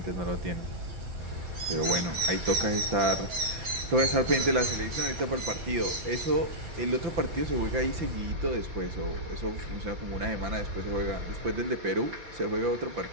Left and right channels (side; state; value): left; late; 5.9 ms